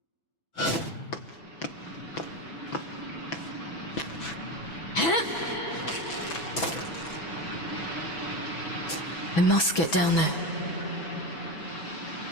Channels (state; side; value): late; right; 6.1 ms